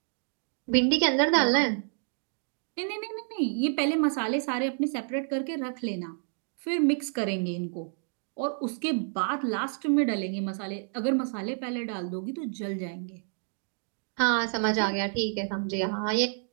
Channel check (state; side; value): silent; left; 58 dB below the other